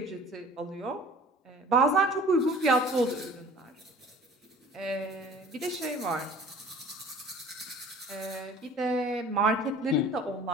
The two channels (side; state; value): both; normal; correlation 0.46